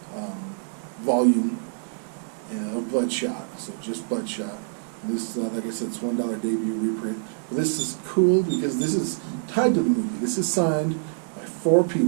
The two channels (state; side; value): silent; left; digital silence